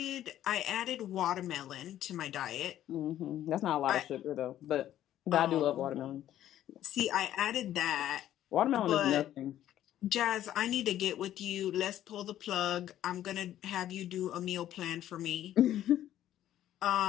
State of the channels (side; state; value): right; quieter; 12.2 dB